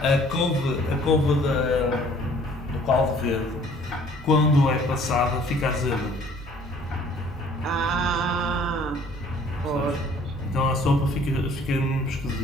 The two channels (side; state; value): both; normal; correlation 0.56